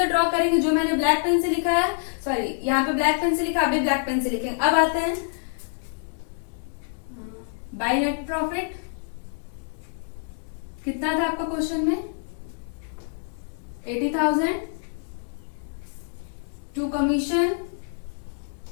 ड्रॉ करेंगे, जो मैंने ब्लैक पेन से लिखा है, सॉरी यहाँ पे ब्लैक पेन से लिखा, आप भी ब्लैक पेन से लिखेंगे। अब आते हैं बाय नेट प्रॉफिट, कितना था आपका क्वेश्चन में, 80,000 टू कमीशन,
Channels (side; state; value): right; silent; digital silence